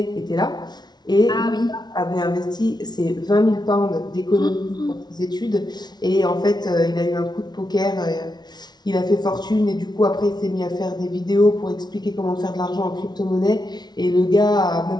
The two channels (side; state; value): right; late; 0.20 ms